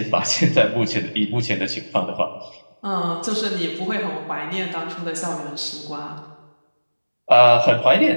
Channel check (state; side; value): inverted; both; correlation -1.00